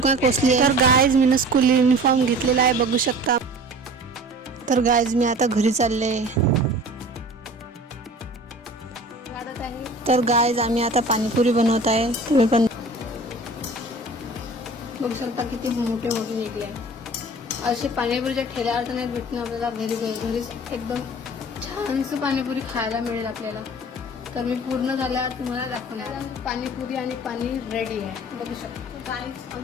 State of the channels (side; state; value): both; normal; correlation 0.42